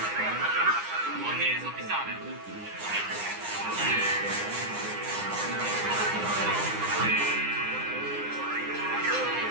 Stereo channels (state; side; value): late; left; 9.7 ms